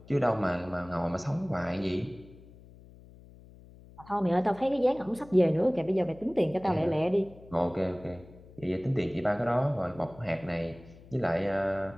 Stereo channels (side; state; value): left; noise; hum, 21 dB below the sound